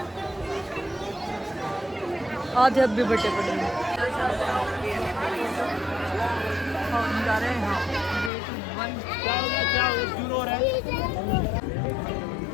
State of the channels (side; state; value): right; drops out; at 8.3 s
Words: आधे अब भी बटे पड़े हैं। हम जा रहे हैं क्या हो गया शुरू हो रहा है।